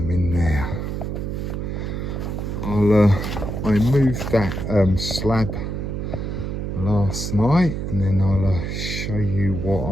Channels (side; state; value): right; noise; hum, 3 dB below the sound